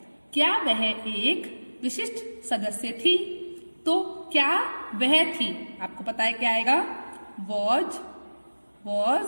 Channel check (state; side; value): inverted; both; correlation -1.00